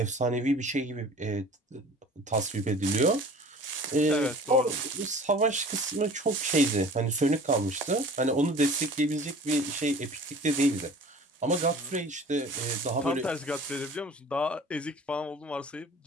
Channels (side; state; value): both; normal; correlation 0.44